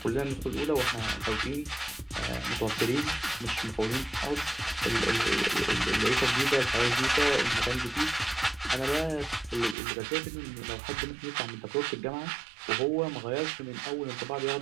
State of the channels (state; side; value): drops out; left; at 9.8 s